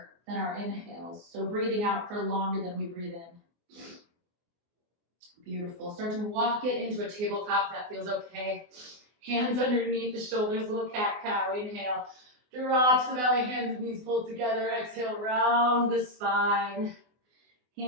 than our inhales. So breathing out for longer than we breathe in. Beautiful. Start to walk it into a tabletop if that feels okay. Hands underneath the shoulders, little cat-cow. Inhale. Drops the belly, hands and knees pulled together. Exhale, round the spine.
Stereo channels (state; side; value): late; left; 24 ms